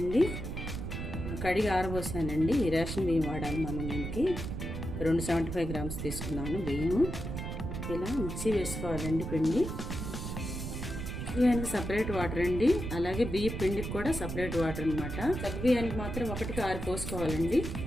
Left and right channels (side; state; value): right; noise; rumble, 5 dB below the sound